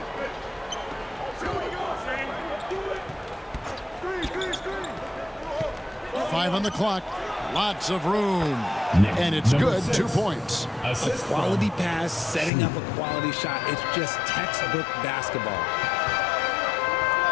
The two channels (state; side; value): drops out; right; at 12.5 s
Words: Screen. 5 on the clock. Lots of room. And it's good. 2 points. A quality pass, setting up a quality shot. It's just textbook basketball.